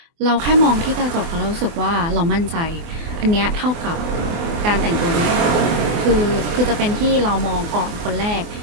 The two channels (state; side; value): late; left; 24 ms